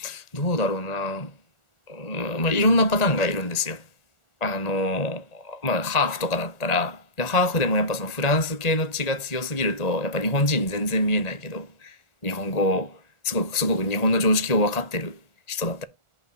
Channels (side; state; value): right; late; 1.8 ms